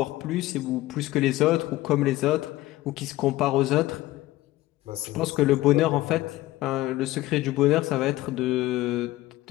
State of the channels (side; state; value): right; quieter; 17.1 dB